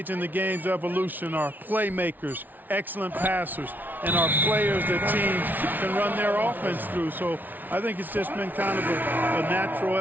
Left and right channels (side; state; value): left; late; 0.084 ms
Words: in the game's evolution are playmakers, excellent passers, and are players that teams can run their offense through. So I think it's just been kind of a natural